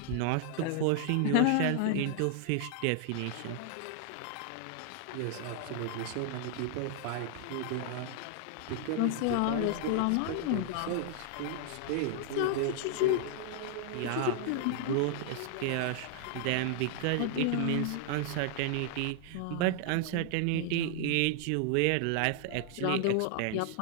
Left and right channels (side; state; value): both; different; correlation 0.00